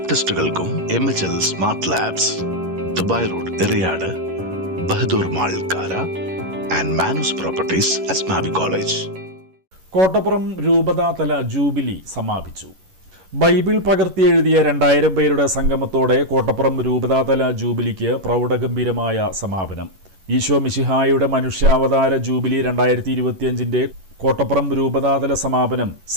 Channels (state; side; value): late; left; 11 ms